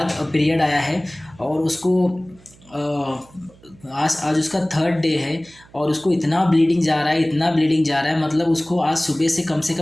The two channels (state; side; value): noise; right; hum, 26 dB below the sound